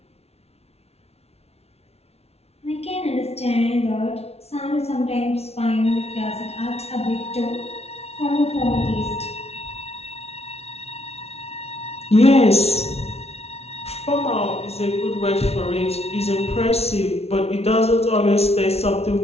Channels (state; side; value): late; right; 0.30 ms